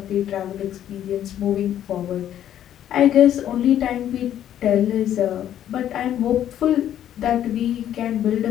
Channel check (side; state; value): right; quieter; 11.0 dB